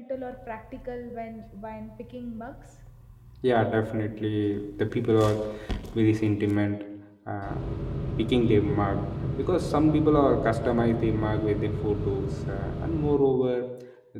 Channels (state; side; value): identical; both; correlation 1.00